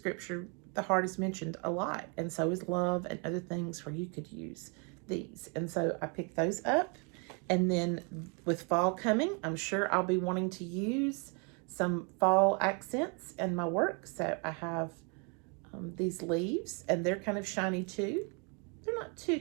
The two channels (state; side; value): quieter; left; 34.0 dB